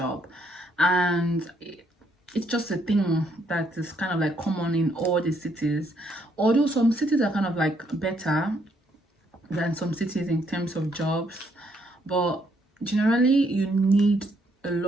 and it's just a thing that is kind of like common in all the cities. Although some cities are kind of like better than some cities in terms of jobs, but generally you need a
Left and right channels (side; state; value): both; normal; correlation 0.71